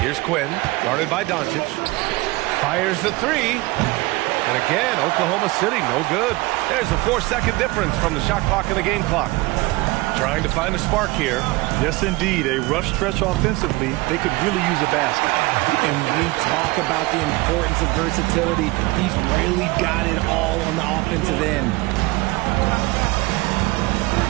Quinn, guarded by Doncic. Fires the three. And again, Oklahoma City, no good. There's a 4-second difference from the shot clock and the game clock. Trying to find a spark here. Yes, indeed. A rough stretch offensively. They could really use a basket. And we talk about the importance of versatility. He's really got it all on the offensive end.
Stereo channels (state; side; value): quieter; left; 21.9 dB